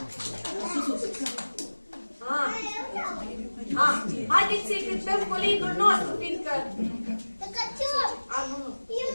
Haideți să-i cântăm colinul nostru, fiindcă...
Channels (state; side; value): inverted; both; correlation -1.00